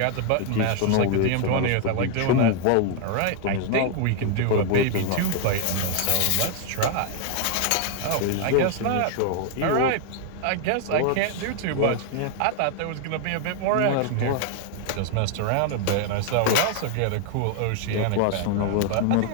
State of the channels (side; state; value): both; different; correlation 0.00